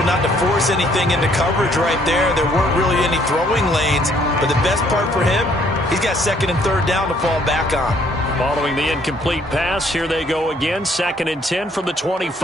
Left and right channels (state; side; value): normal; both; correlation 0.64